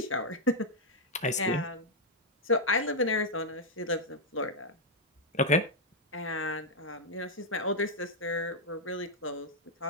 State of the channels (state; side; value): normal; both; correlation -0.01